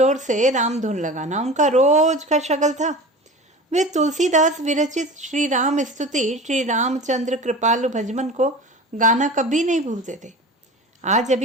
से रामधुन लगाना उनका रोज का शगल था। वे तुलसीदास विरचित श्री राम स्तुति, श्री रामचंद्र कृपालु भजमन को गाना कभी नहीं भूलते थे। आज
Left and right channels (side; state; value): both; normal; correlation 0.35